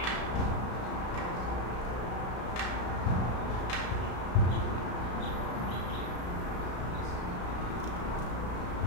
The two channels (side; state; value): right; late; 34 ms